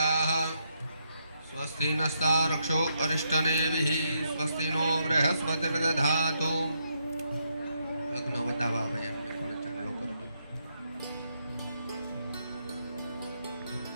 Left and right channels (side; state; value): both; inverted; correlation -0.77